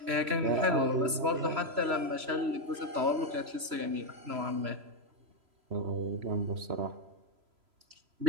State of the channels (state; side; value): late; left; 3.0 ms